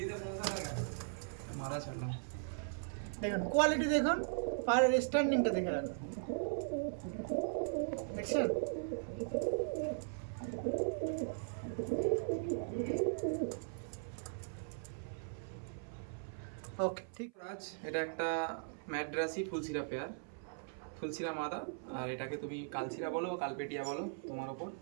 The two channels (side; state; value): left; silent; 52 dB below the other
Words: মারা ছাড়লাম, দেখুন কোয়ালিটি দেখুন, পায়রার স্ট্যান্ডিংটা দেখে রাখুন, দেখছেন? ওকে ঠিক। রাজ, এটা একটা ম্যাড্রাসি ফুলসিরা পেয়ার, ফুলসিরা মাদা, আর এটাকে তুমি কালসিরা বলো বা কালপেটিয়া বলো, তোমার ওপর।